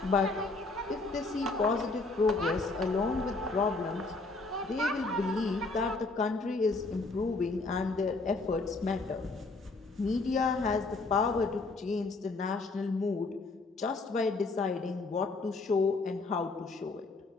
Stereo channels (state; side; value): quieter; right; 3.5 dB